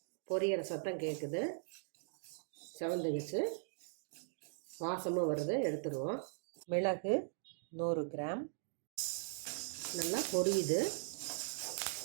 பொரியிற சத்தம் கேட்குது, செவந்துக்குச்சு, வாசமும் வருது, எடுத்துருவோம். மிளகு 100 கிராம் நல்லா பொரியுது.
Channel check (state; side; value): silent; left; digital silence